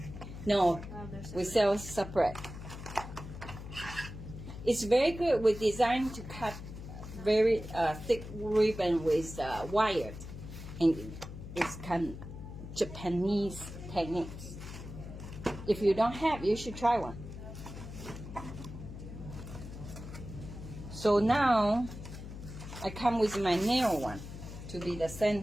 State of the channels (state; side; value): noise; left; hum, 11 dB below the sound